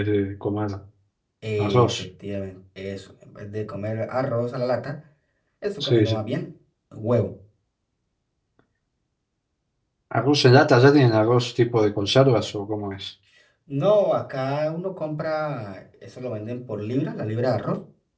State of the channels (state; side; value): identical; both; correlation 1.00